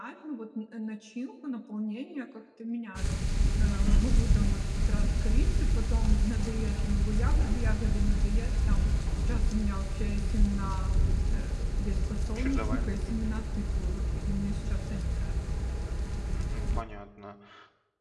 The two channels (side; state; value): both; identical; correlation 1.00